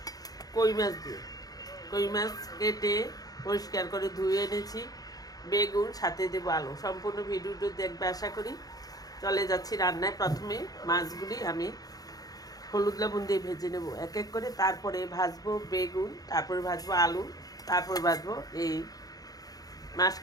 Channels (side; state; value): right; late; 0.18 ms